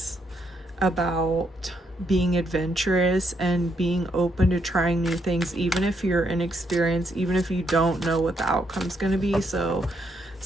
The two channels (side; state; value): both; normal; correlation 0.76